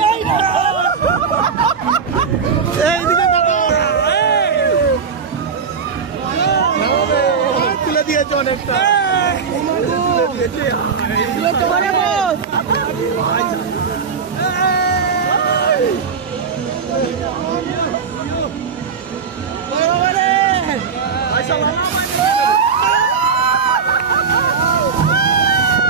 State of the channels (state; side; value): quieter; left; 5.9 dB